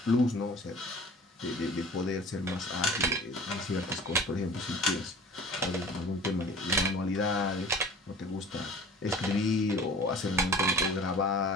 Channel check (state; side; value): normal; both; correlation 0.43